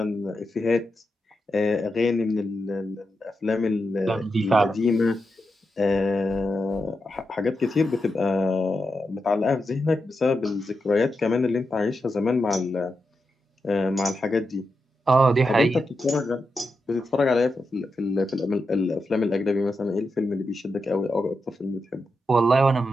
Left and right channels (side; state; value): both; normal; correlation 0.87